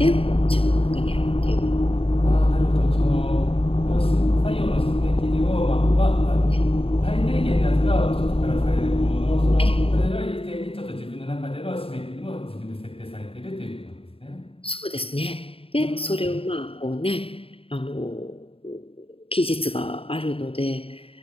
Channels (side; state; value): right; late; 0.27 ms